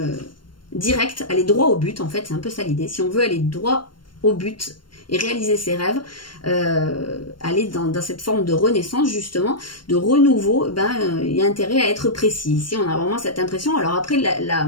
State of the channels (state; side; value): late; right; 0.72 ms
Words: direct, aller droit au but, en fait c'est un peu ça l'idée. Si on veut aller droit au but et réaliser ses rêves, aller dans cette forme de renaissance justement, de renouveau, il y a intérêt à être précis. Ici on a vraiment cette impression. Alors après